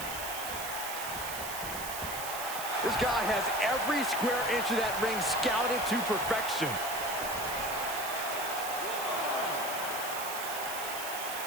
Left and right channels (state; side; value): noise; right; hiss, 7 dB below the sound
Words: This guy has every square inch of that ring scouted to perfection.